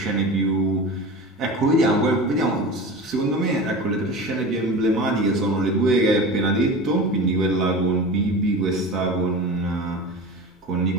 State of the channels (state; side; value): normal; both; correlation 0.31